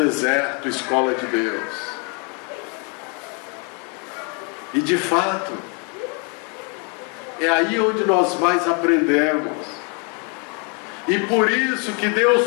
escola de Deus. E de fato, é aí onde nós mais aprendemos. E por isso que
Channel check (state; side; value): quieter; right; 35.9 dB